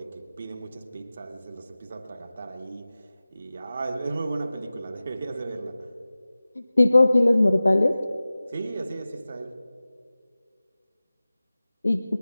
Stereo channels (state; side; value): inverted; both; correlation -0.97